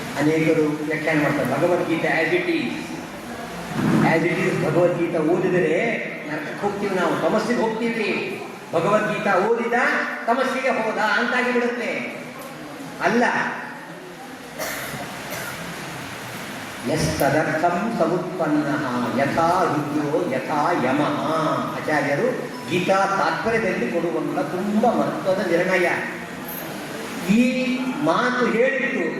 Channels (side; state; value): both; identical; correlation 1.00